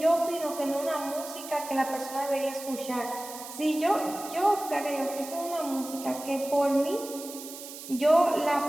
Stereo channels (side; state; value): right; noise; hiss, 12 dB below the sound